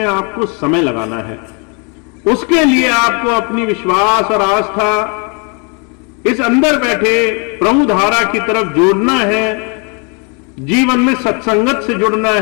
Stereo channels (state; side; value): quieter; right; 35.2 dB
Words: आपको समय लगाना है। उसके लिए आपको अपनी विश्वास और आस्था इस अंदर बैठे प्रभु धारा की तरफ जोड़ना है, जीवन में सत्संगत से जुड़ना